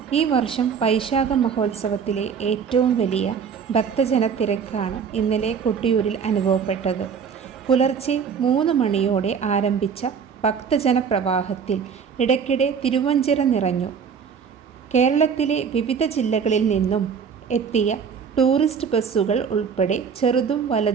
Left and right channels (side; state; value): left; quieter; 6.7 dB